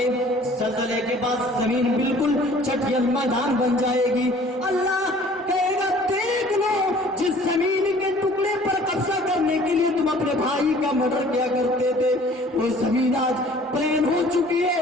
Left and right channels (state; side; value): normal; both; correlation 0.51